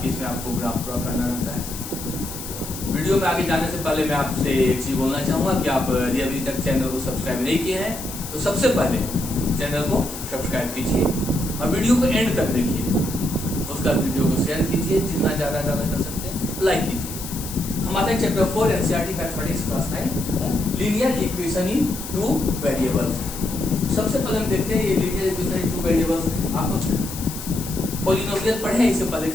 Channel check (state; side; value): noise; left; hiss, 10 dB below the sound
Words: इसमें आपको ग्राफ ड्रॉ करना रहता है। वीडियो में आगे जाने से पहले मैं आपसे एक चीज बोलना चाहूंगा कि आप यदि अभी तक चैनल को सब्सक्राइब नहीं किए हैं तो सबसे पहले चैनल को सब्सक्राइब कीजिए और वीडियो को एंड तक देखिए। उसका वीडियो को शेयर कीजिए, जितना ज्यादा कर सकते हैं लाइक कीजिए। हमारे chapter 4 NCERT mathematics class 9 linear equation in two variables. सबसे पहले हम देखते हैं ये linear equation in two variables. आप पॉलिनोमियल पढ़े हैं इससे पहले